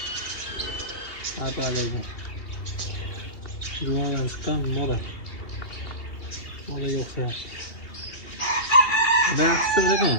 Apalaydi. Juvondan chiqqan mola. Mola yo'qsa. Baxshi ekan.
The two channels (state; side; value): late; right; 2.8 ms